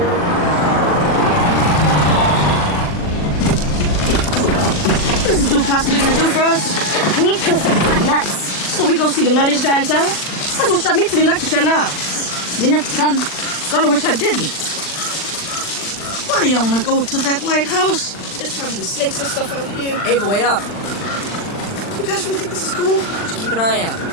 What is this dude possibly gonna do for us? We need proof that it's not nuts. So we go see the nuttiest guy in town? That's what shot me to the electric chair now. Didn't have to come. Kinda wish I didn't. Why do y'all wanna go to that lighthouse? There's probably snakes and stuff out here. Ava, wait up. You guys really think this is cool? Just keep an eye out.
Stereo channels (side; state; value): right; late; 40 ms